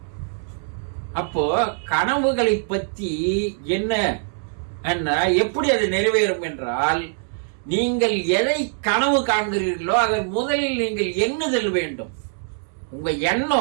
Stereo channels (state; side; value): silent; left; 63 dB below the other